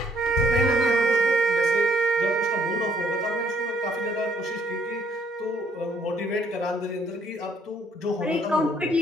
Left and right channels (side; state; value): both; normal; correlation 0.66